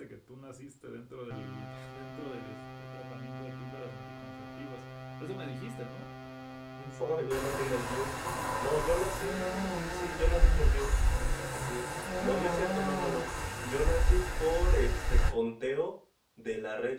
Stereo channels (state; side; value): identical; both; correlation 1.00